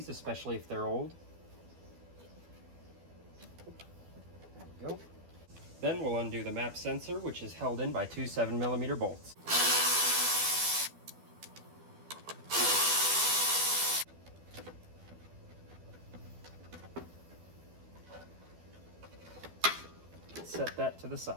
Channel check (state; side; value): late; left; 12 ms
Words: especially if they're old. There we go. Then we'll undo the map sensor, which is held in by 2 7mm bolts. Set that to the